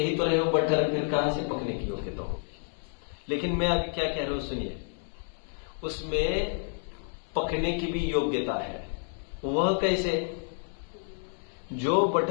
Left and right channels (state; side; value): silent; right; 58 dB below the other